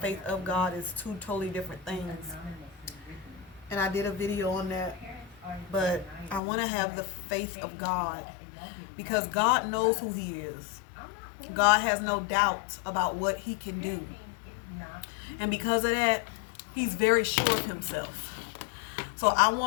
of God is two totally different things. And I did a video on that. But I want to have the faith of God because God knows who He is. God has no doubt about what He can do. And because of that, He's very sure of Himself. So I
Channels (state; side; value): drops out; right; at 6.4 s